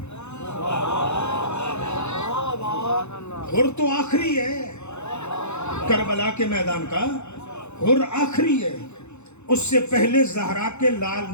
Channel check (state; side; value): late; right; 0.82 ms